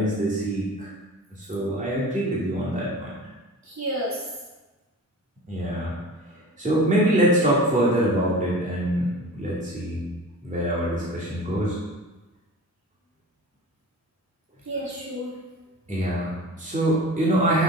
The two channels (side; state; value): both; normal; correlation 0.37